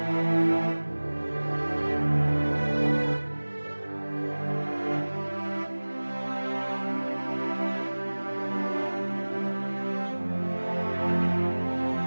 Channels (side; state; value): both; inverted; correlation -1.00